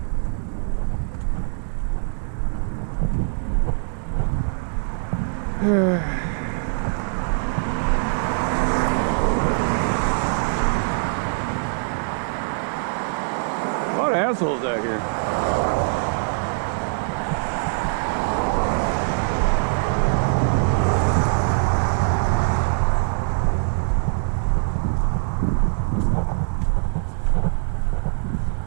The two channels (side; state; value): left; silent; digital silence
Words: A lot of assholes out here.